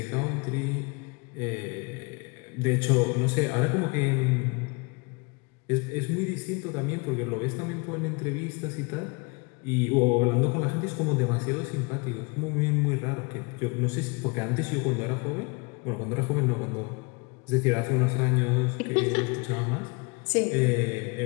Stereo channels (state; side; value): quieter; right; 29.3 dB